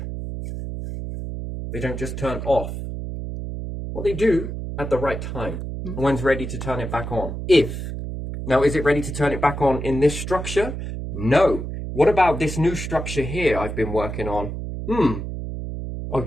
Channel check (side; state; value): right; noise; hum, 6 dB below the sound